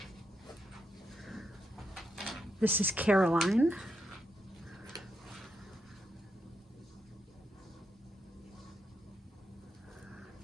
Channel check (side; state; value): both; normal; correlation 0.82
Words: this is Caroline.